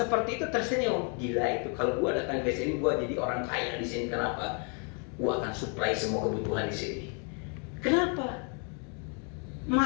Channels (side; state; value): right; quieter; 38.8 dB